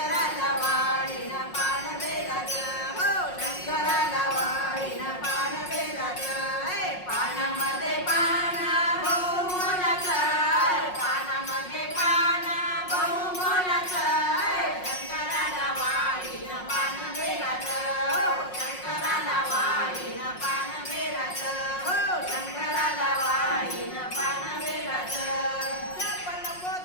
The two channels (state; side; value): late; right; 5.5 ms